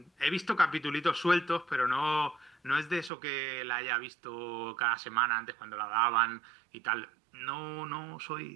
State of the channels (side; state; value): left; drops out; at 3.1 s